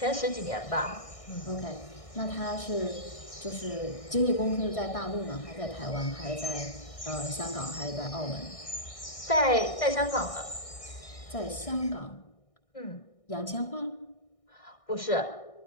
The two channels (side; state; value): right; late; 1.6 ms